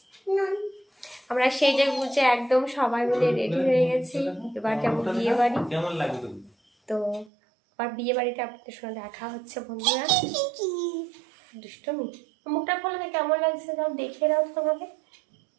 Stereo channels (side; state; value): left; drops out; at 7.3 s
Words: আমরা সেজে গুজে একদম সবাই মিলে রেডি হয়ে গেছি। এবার যাবো বিয়ে বাড়ি। কেমন লাগে তো? তো আর বিয়ে বাড়িতে আপনাদের সঙ্গে দেখা হচ্ছে বন্ধুরা। দুষ্টমি, মুখটা খোলা, কেমন লাগছে সব দেখে দাও তো আমাকে।